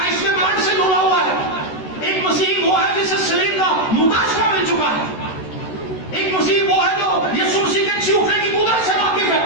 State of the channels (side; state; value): right; late; 13 ms